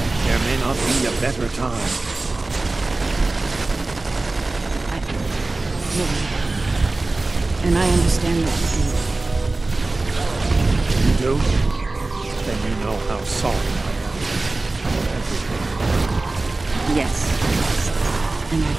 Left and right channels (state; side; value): quieter; left; 3.2 dB